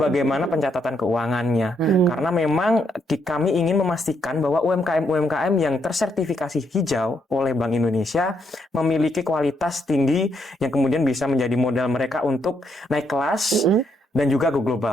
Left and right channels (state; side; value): normal; both; correlation 0.76